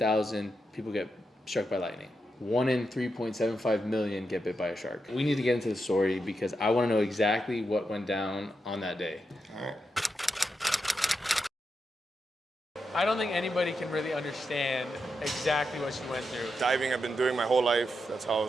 people get struck by lightning. 1 in 3.75 million get bit by a shark. We need to get into the story because I want to know exactly what went down on that day. All right. I don't think anybody can really understand exactly what you went through. Diving I've been doing my whole life. That's how I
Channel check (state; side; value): normal; both; correlation 0.86